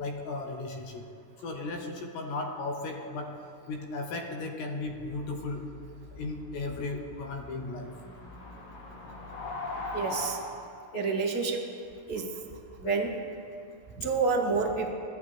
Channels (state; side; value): late; right; 16 ms